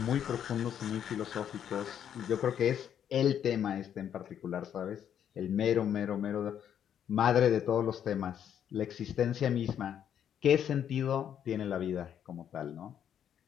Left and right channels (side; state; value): right; quieter; 9.3 dB